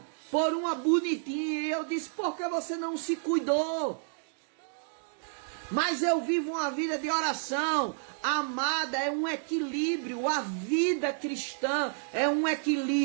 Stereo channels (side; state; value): left; silent; digital silence